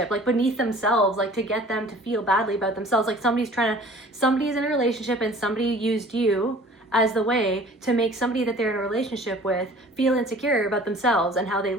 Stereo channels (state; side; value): normal; both; correlation 0.48